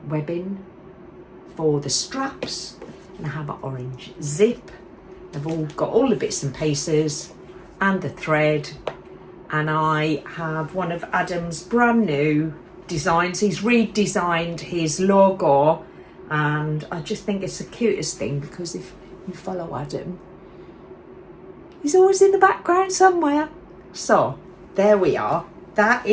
webbing for the straps, and I have an orange zip. I've all got all the bits and pieces and the thread, and I have one of Adam's brand new designs. He's redesigned his logo, and I just think it's the cutest thing, because if you follow Adam, he's always in the background somewhere. So there we are. That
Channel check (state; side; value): identical; both; correlation 1.00